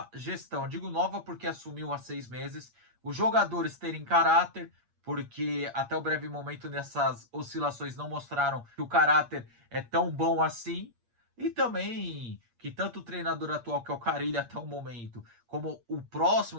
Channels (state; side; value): late; left; 8.5 ms